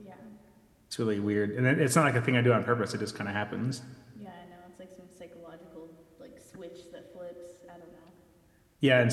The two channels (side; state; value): both; identical; correlation 1.00